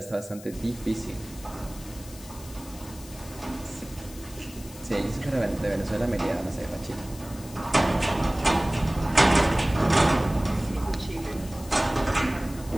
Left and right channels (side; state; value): left; noise; hiss, 18 dB below the sound